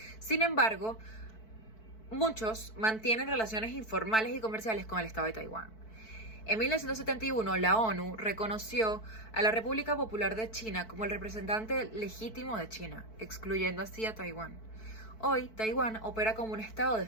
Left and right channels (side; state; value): right; late; 4.6 ms